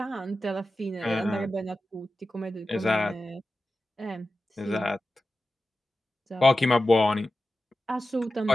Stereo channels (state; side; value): normal; both; correlation 0.93